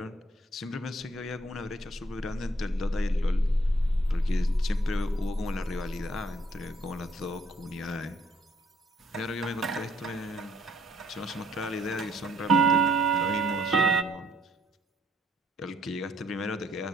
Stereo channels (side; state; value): both; normal; correlation 0.67